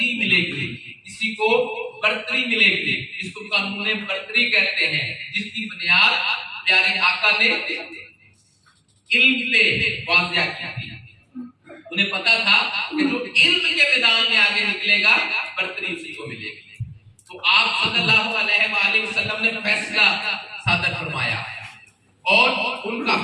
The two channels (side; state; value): both; identical; correlation 1.00